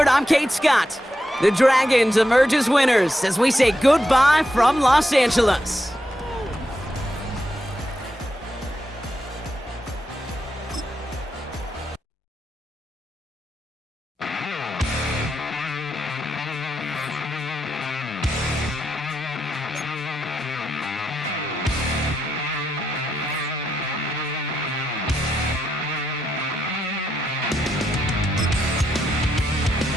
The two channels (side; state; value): both; normal; correlation 0.84